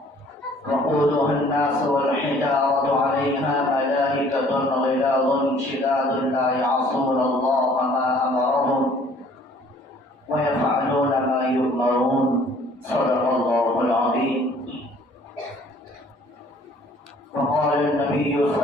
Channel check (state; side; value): normal; both; correlation 0.56